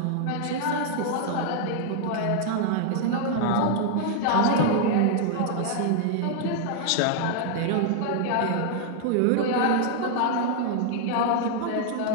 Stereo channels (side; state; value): both; different; correlation 0.00